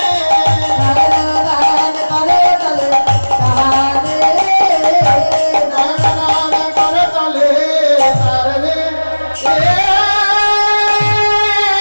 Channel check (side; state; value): both; inverted; correlation -1.00